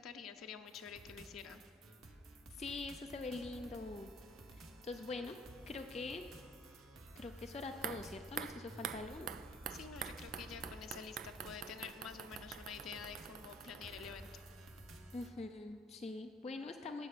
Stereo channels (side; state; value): both; normal; correlation 0.57